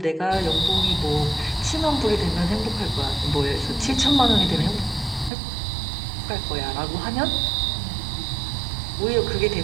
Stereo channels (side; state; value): left; drops out; at 5.3 s